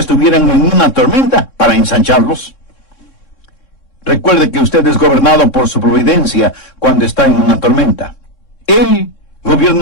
en una tormenta para ensancharlos. Recuerde que usted es gobernado por su providencia cuando está en una tormenta. Él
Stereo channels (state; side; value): late; right; 3.6 ms